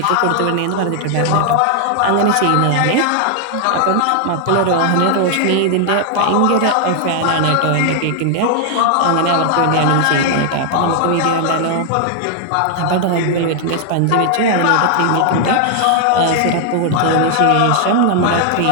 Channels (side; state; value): both; different; correlation 0.00